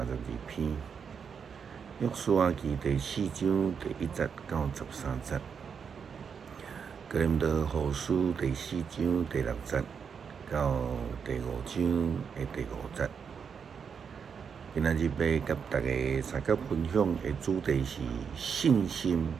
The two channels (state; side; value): quieter; left; 6.6 dB